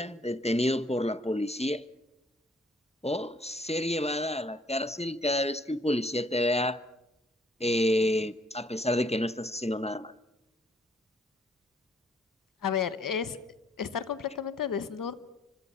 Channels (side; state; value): both; normal; correlation 0.64